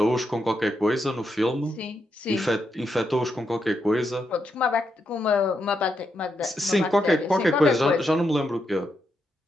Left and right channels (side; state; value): both; normal; correlation 0.82